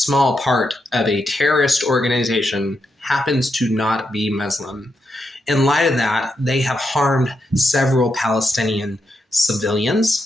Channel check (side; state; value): both; normal; correlation 0.83